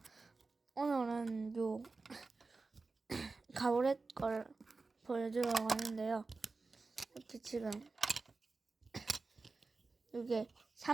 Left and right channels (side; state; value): left; quieter; 3.9 dB